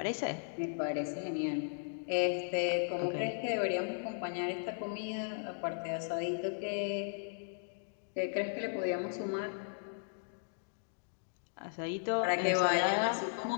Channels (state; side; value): silent; right; digital silence